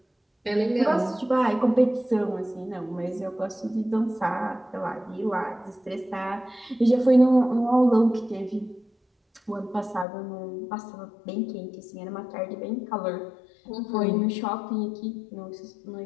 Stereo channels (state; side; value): drops out; right; at 10.1 s